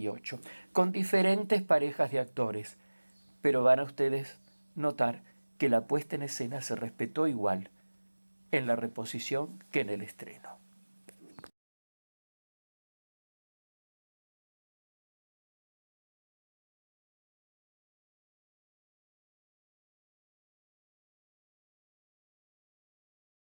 con diferentes parejas de actores, pero van a ustedes notar que la puesta en escena se respetó igual en la reposición que en el estreno.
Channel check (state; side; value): inverted; both; correlation -1.00